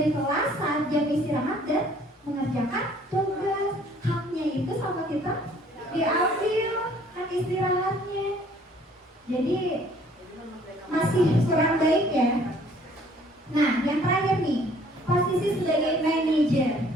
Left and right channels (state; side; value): normal; both; correlation 0.58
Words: kelas saat jam istirahat dan mengerjakan tugas. Haknya itu sama kita diambil, hak istirahatnya. Jadi masih kurang baik ya. Nah, yang terakhir nih, posisi sebagai manajer.